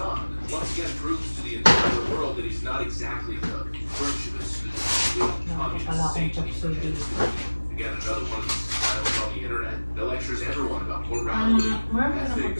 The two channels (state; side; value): inverted; both; correlation -1.00